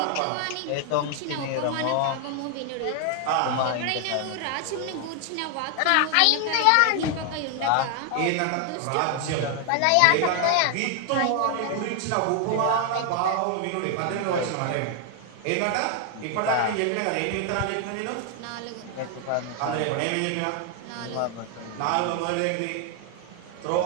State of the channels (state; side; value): different; both; correlation 0.00